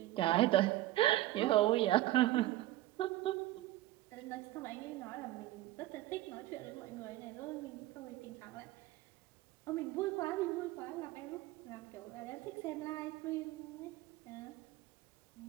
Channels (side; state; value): left; quieter; 15.6 dB